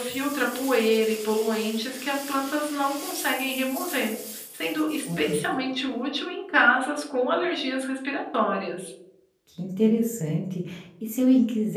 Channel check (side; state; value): both; identical; correlation 1.00